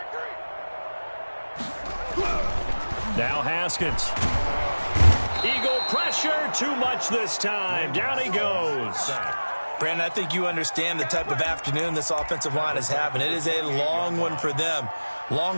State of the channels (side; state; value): both; inverted; correlation -1.00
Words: Now Haskins. Eagle pressure, too much this time. Down he goes. Brandon, I think you understand the type of afternoon this offensive line is having. It is a long one for them.